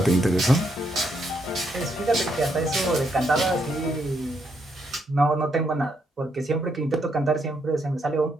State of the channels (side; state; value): both; normal; correlation 0.76